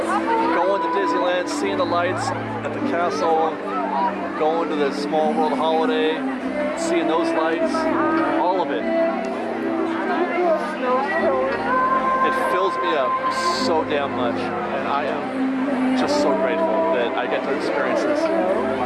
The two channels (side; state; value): both; identical; correlation 1.00